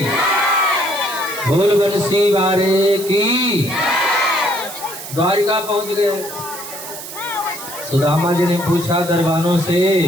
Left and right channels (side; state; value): right; noise; hiss, 11 dB below the sound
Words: बोल बंसी वारे की। द्वारिका पहुंच गए। सुदामा जी ने पूछा दरबानों से,